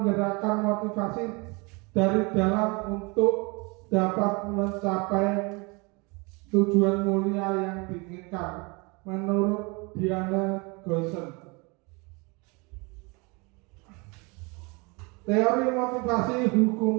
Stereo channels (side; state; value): left; quieter; 28.8 dB